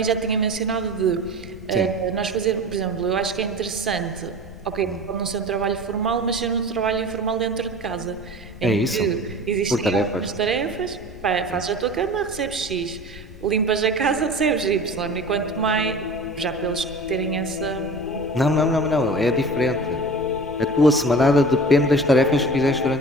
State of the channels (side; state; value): left; noise; rumble, 16 dB below the sound